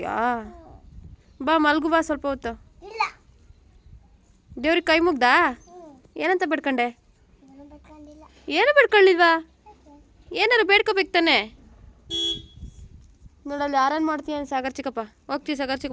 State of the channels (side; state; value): both; identical; correlation 1.00